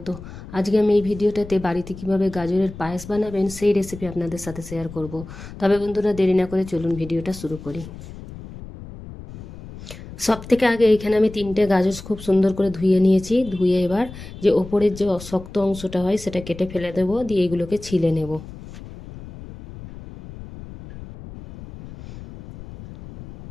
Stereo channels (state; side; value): noise; left; rumble, 14 dB below the sound